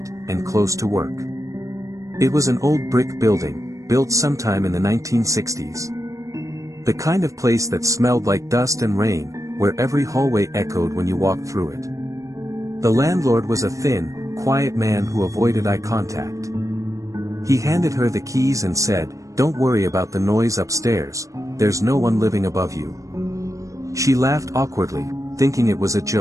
and close to work. It was an old brick building, built sometime in the 1960s. The kind of place that smelled like dust and rain, where every hallway echoed when you walked through it. The landlord was a thin, quiet man who avoided eye contact. He handed her the keys and said, "Don't worry about the noise upstairs, there's no one living above you." She laughed awkwardly, thinking it was a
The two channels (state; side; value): late; left; 0.16 ms